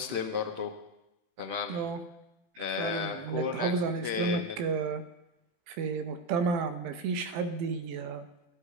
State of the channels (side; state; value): left; late; 18 ms